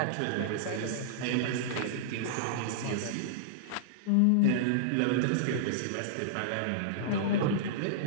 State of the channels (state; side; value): different; both; correlation -0.02